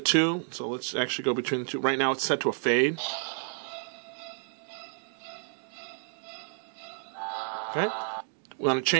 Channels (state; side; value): silent; left; digital silence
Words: so let's actually go between the two. Right now it's set to a fade. Okay. We want to